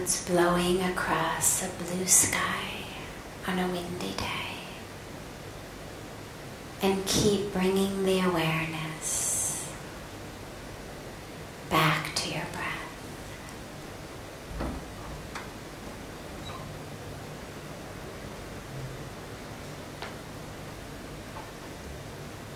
blowing across a blue sky on a windy day. And keep bringing the awareness back to your breath.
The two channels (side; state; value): both; identical; correlation 1.00